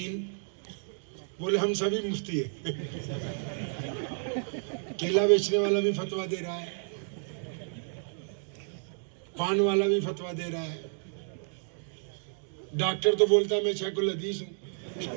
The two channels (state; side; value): silent; left; digital silence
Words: بولے ہم سبھی مفتی ہیں۔ کیلا بیچنے والا بھی فتویٰ دے رہا ہے، پان والا بھی فتویٰ دے رہا ہے، ڈاکٹر تو بولتا ہے میں شیخ الحدیث ہوں،